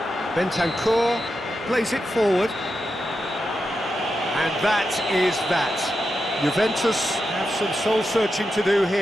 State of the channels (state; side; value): normal; both; correlation 0.88